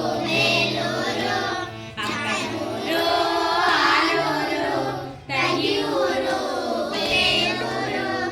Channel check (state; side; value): identical; both; correlation 1.00